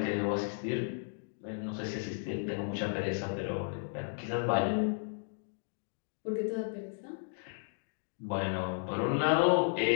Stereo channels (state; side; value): silent; right; digital silence